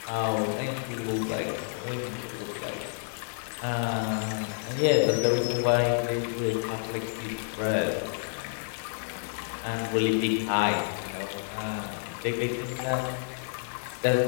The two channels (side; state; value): right; silent; 58 dB below the other